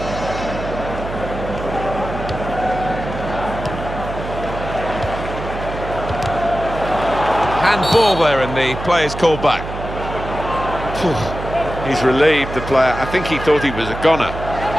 Handball there, and the play is called back. He's relieved, the player. I think he thought he was a goner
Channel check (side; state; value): right; noise; hum, 8 dB below the sound